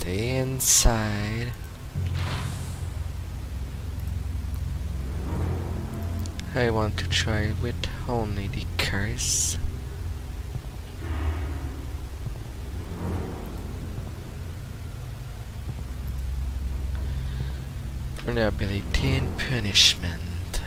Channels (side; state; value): both; identical; correlation 1.00